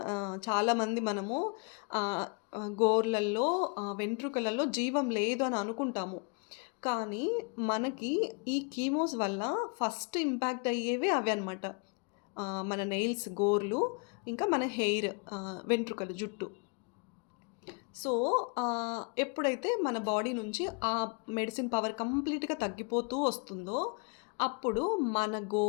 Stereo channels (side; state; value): right; quieter; 35.5 dB